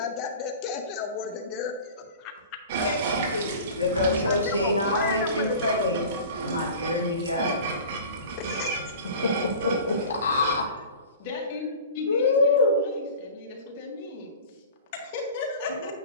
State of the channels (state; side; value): inverted; both; correlation -0.39